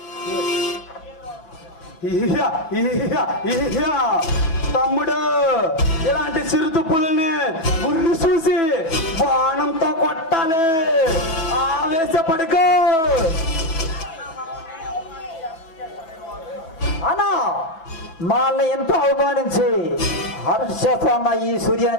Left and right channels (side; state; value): right; late; 6.1 ms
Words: తమ్ముడు, ఇలాంటి చిరుత పులిని ఉర్రి చూసి బాణంతో కొట్టాలి. ఆవేశపడుకో అన్నా. వాళ్ళని ఎంతో అవమానించి హర్షేస్తున్న ఈ